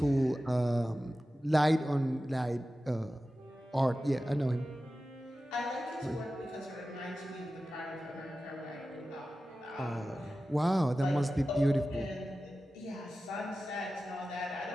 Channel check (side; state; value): both; normal; correlation 0.94